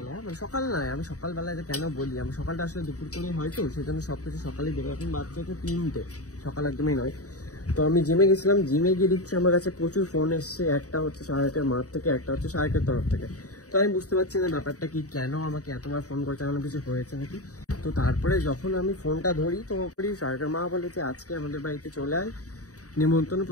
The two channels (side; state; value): right; late; 0.66 ms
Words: মানে সকাল নয়, আমি সকালবেলা এটা কেন বলি, আমি সকালটা আসলে দুপুর করে হয়তো সেজন্য সবকিছু সকালেই বেরো। এখন বাচ্চা হচ্ছে 3টে, সকাল একদমই নয়। তো আমি জিমে গেছিলাম, জিমে গিয়ে দিচ্ছি আমার কাছে প্রচুর ফোন এসছে, একটা হচ্ছে সাহেবের মাঠ থেকে, একটা হচ্ছে সাহেবের তরফ থেকে। তো আমি বুঝতে পারছি না ব্যাপারটা কি, কেন আমাকে এতবার ফোন করছে, এমন কিছু হয়েছে নাকি। তো তারপরে যখন আমি ফোনটা ধরি তো সাহেবের মা বলে যে আজকে আমাদের বাড়িতে চলে আয়, নিমন্ত্রণ,